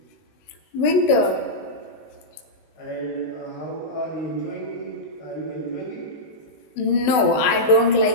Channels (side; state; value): right; late; 19 ms